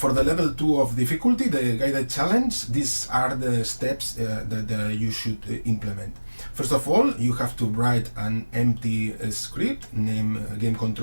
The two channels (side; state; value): both; inverted; correlation -1.00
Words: the level 2 of difficulty, the guided challenge, these are the steps that you should implement. First of all, you have to write an empty script named